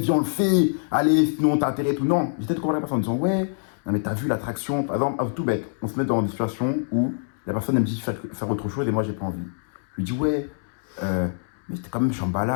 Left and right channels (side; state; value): right; silent; 62 dB below the other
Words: on le fait, allez, sinon t'as intérêt et tout. Non, j'essaie de convaincre la personne en disant, ouais, non, mais t'as vu l'attraction, par exemple, tout bête, on se met dans des situations où la personne elle me dit faire autre chose et moi, j'ai pas envie. Je lui dis, ouais, mais c'était quand même